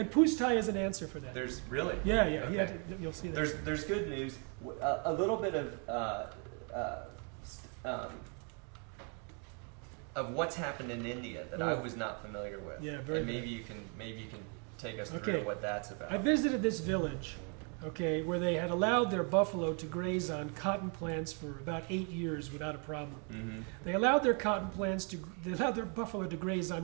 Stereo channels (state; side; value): quieter; left; 37.8 dB